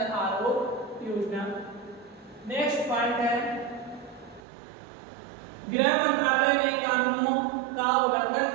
आरोग्य योजना। नेक्स्ट पॉइंट है, गृह मंत्रालय ने कानूनों का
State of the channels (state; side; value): drops out; left; at 4.4 s